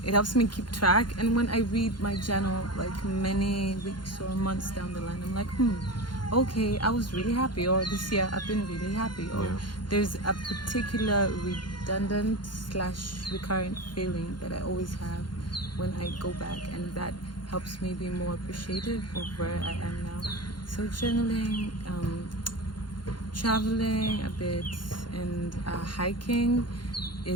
it helps me keep track. And when I read my journal, like many weeks or months down the line, I'm like, okay, I was really happy. Or this year, I've been really happy. Or there's a particular redundant / recurrent feeling that I always have when I go back. And that helps me be more appreciative of where I am now. So journaling, traveling a bit, and hiking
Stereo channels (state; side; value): late; right; 0.71 ms